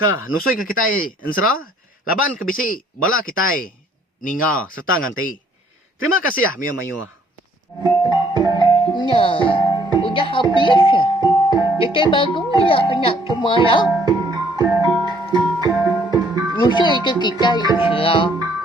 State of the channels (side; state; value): both; normal; correlation 0.63